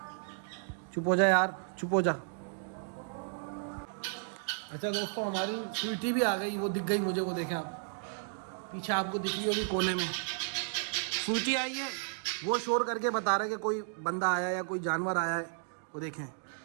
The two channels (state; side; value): silent; left; digital silence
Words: चुप हो जा यार, चुप हो जा। अच्छा दोस्तों, हमारी स्वीटी भी आ गई, वो दिख गई मुझे, वो देखें आप पीछे, आपको दिख रही होगी कोने में। स्वीटी आई है, वो शोर करके बता रहा है कि कोई बंदा आया है या कोई जानवर आया है। वो देखें,